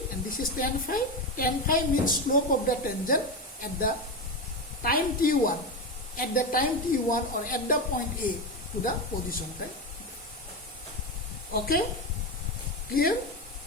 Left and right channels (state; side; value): normal; both; correlation 0.15